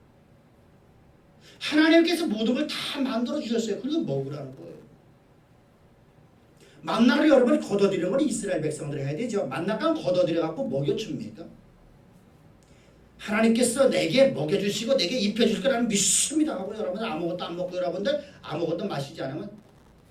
하나님께서 모든 걸 다 만들어 주셨어요. 그걸 먹으라는 거예요. 만나를 여러분이 걷어들이는 건 이스라엘 백성들이 해야 되죠. 만나가 걷어들여갖고 먹여줍니까? 하나님께서 내게 먹여주시고 내게 입혀줄 거라는 믿습니다 하고 여러분들 아무것도 안 먹고 여러분들 아무것도 마시지 않으면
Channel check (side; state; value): both; identical; correlation 1.00